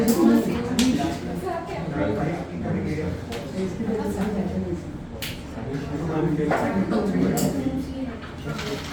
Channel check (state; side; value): identical; both; correlation 1.00